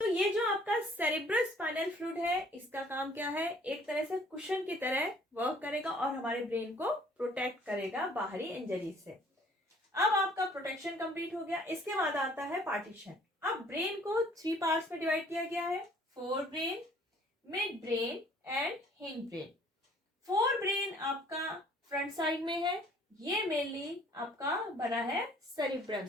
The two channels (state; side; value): normal; both; correlation 0.57